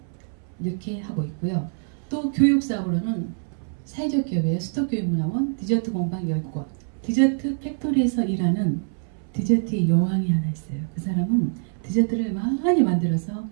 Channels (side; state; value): left; silent; 62 dB below the other